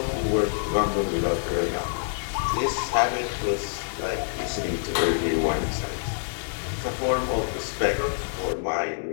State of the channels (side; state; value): right; silent; digital silence